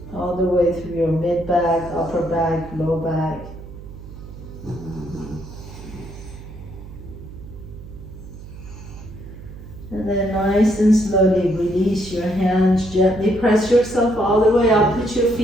all the way through your mid-back, upper back, low back. And then nice and slowly release your hands. Gently press yourself all the way up. Put your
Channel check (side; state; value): right; noise; hum, 15 dB below the sound